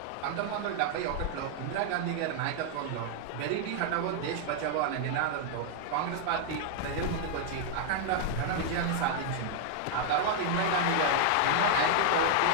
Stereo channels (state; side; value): different; both; correlation 0.00